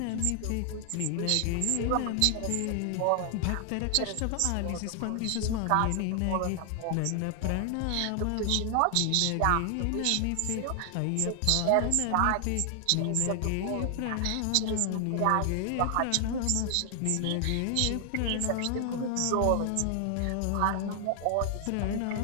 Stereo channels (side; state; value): both; different; correlation 0.00